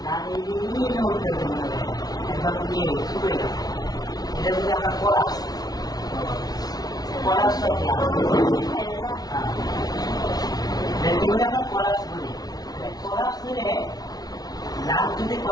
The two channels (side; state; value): right; late; 0.19 ms